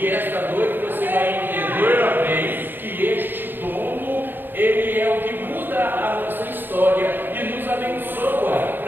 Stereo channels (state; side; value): late; left; 0.095 ms